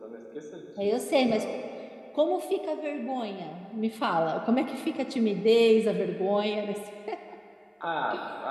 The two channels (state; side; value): identical; both; correlation 1.00